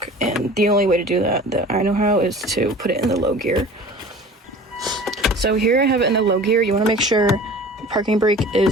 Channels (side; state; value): both; normal; correlation 0.42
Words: and the only way to do that I know how is to put it in the low gear. So here I have it in the low gear. You want to make sure the parking brake